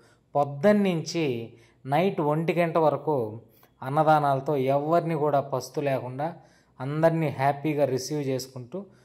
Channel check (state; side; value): identical; both; correlation 1.00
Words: పొద్దున్నుంచి నైట్ 1 గంట వరకు అన్నదానాలతో ఎవరిని కూడా పస్తు లేకుండా అందరినీ హ్యాపీగా రిసీవ్ చేసుకుంటూ